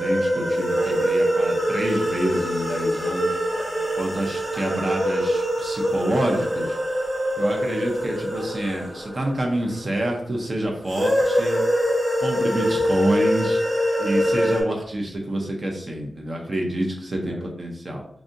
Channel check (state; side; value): normal; both; correlation 0.92